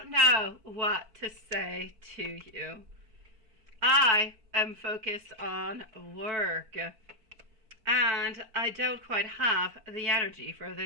know what to say to you. I am focused on work. And I don't quite have the energy for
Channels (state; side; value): late; left; 4.5 ms